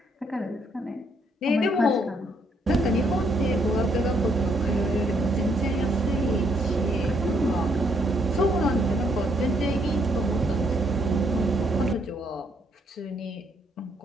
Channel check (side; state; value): both; normal; correlation 0.71